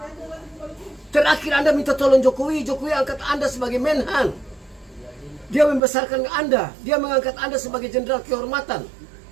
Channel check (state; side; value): drops out; left; at 5.8 s